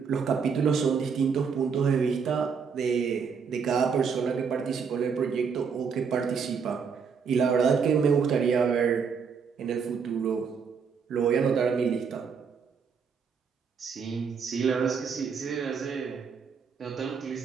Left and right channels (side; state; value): left; quieter; 6.1 dB